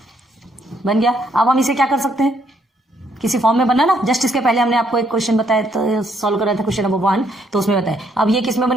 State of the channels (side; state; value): both; normal; correlation 0.71